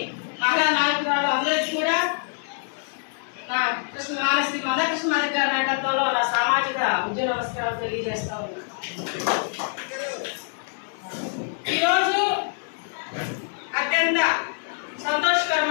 మహిళా నాయకురాలు అందరికీ కూడా నా శ్రీ మందకృష్ణమాదిగ గారి నాయకత్వంలో నా సామాజిక ఉద్యోగ నమస్కారాలు తెలియజేస్తా ఉన్నా. ఈరోజు అత్యంత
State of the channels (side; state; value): right; silent; 62 dB below the other